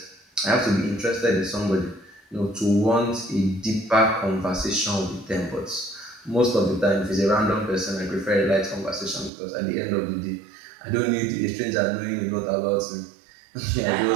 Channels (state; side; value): drops out; left; at 9.3 s